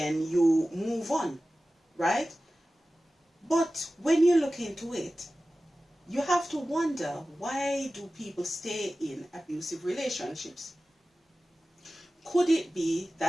you move on, right? But when you look into it, you have to wonder, why do people stay in abusive relationships? Could it be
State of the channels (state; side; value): normal; both; correlation 0.96